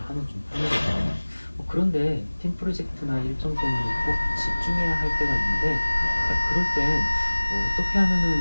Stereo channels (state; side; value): inverted; both; correlation -1.00